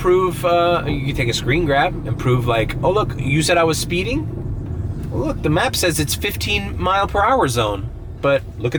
you could take a screen grab and prove like, oh look, you said I was speeding? Well, look, the map says it's 15 mile per hour zone. But look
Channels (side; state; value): both; identical; correlation 1.00